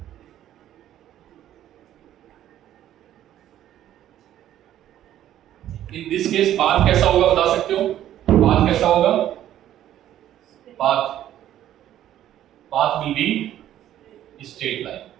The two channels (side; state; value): left; quieter; 12.0 dB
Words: In this case path कैसा होगा बता सकते हो, पाथ कैसा होगा, path will be straight line,